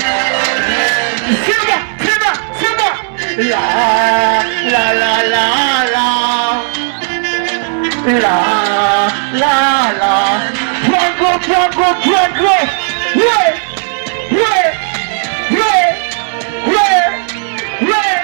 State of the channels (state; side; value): silent; left; digital silence